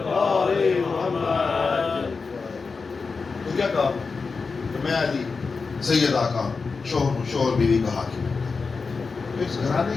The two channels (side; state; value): right; quieter; 4.6 dB